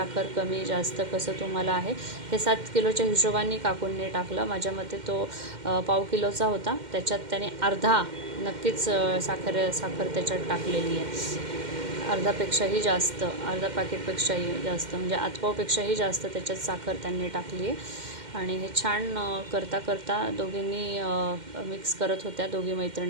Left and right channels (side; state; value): left; late; 2.1 ms